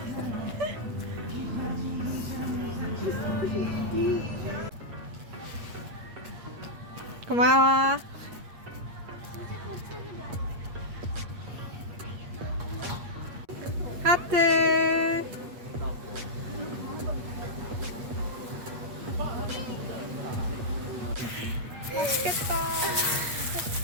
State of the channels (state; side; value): late; left; 8.4 ms